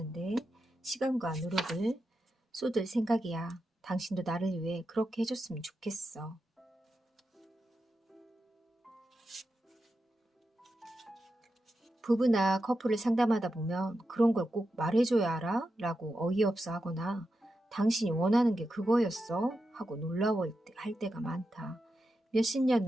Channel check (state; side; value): normal; both; correlation 0.88